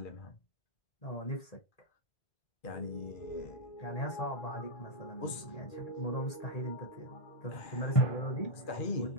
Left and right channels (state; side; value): late; right; 1.8 ms